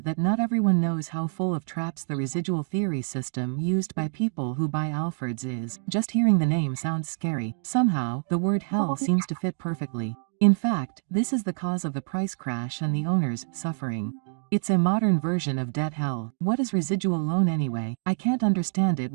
that not everyone knows how full of traps the residual theory system used by people who buy Alfords is. Just hearing the name sounds scary. Somehow, the word hell seems to fit perfectly. In fact, this is the cause of the price crash and the owners suffering. It's a modern version of debt hell. What is residual loan anyway? I can't understand it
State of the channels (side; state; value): left; silent; digital silence